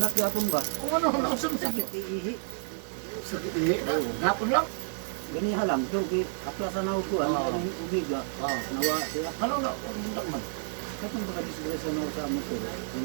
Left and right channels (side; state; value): left; silent; digital silence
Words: yapon ba? Kung ano, nausap sa Sakit ihi. sakit ihi. Hapon lang. Gani halam so kay aplasan ako ko Oo. ang ubiga. Nawa siya. Ano na, bundak man. Katong baka disgrasya na ako sa motor. Yung